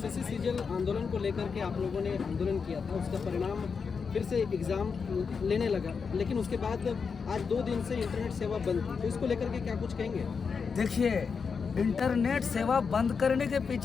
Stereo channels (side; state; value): right; quieter; 5.6 dB